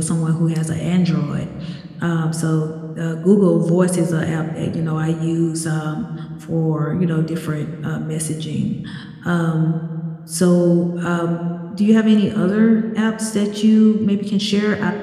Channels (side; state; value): both; identical; correlation 1.00